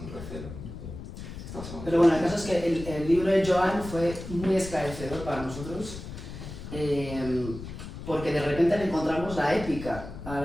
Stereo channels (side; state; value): left; noise; rumble, 10 dB below the sound